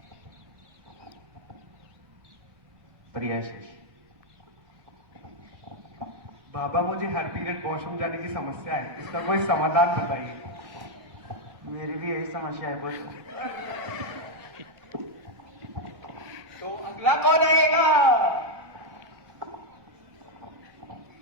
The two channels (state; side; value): late; left; 1.1 ms